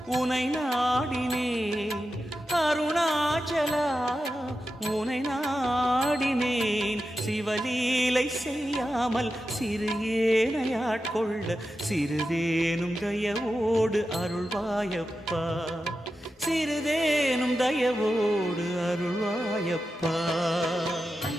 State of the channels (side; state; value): both; normal; correlation 0.91